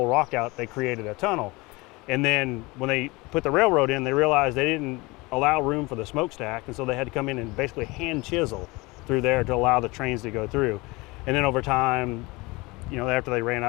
rock out, they created a tunnel. And then when they put the railroad in, they realized they didn't allow room for the smokestack. And so they had to come in and basically hand chisel through there to allow the trains to go through. And then over time, after they ran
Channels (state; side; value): quieter; right; 23.8 dB